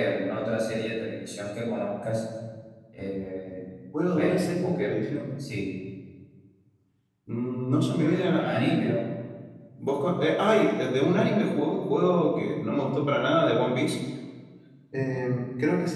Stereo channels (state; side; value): identical; both; correlation 1.00